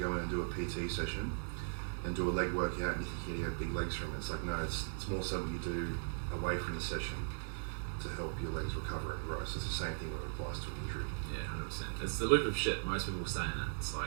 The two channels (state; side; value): silent; left; digital silence